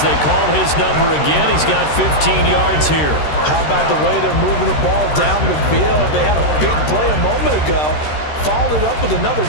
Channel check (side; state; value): right; late; 13 ms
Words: they call his number again. He's got 15 yards here. How about the way they're moving the ball down the field? They had a big play a moment ago. Followed it up with another